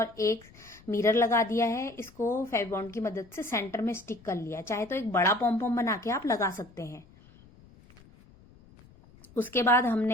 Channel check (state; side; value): noise; left; rumble, 25 dB below the sound